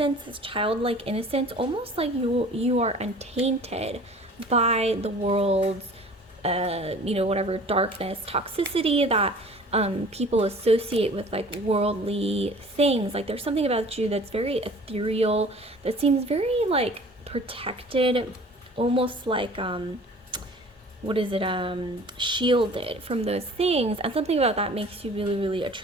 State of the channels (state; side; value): normal; both; correlation 0.47